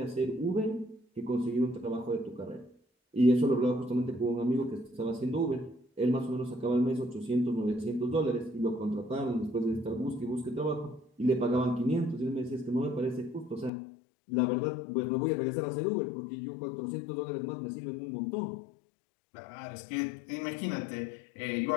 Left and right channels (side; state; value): right; drops out; at 13.7 s